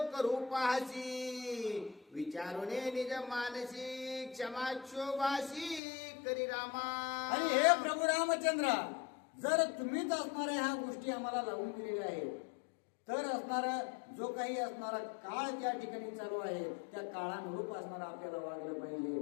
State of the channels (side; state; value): right; drops out; at 5.8 s